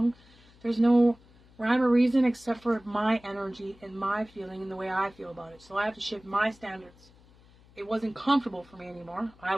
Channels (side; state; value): left; noise; hum, 27 dB below the sound